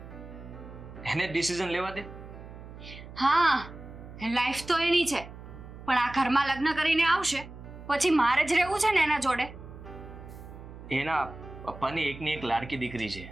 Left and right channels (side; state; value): right; noise; hum, 15 dB below the sound